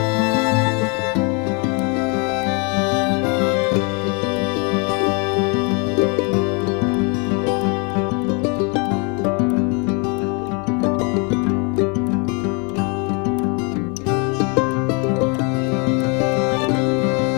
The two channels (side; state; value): right; quieter; 33.6 dB